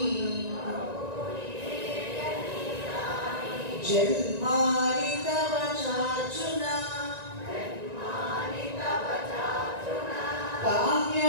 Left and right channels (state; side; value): late; left; 1.9 ms